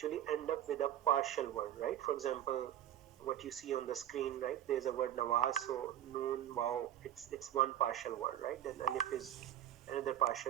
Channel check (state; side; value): quieter; left; 11.8 dB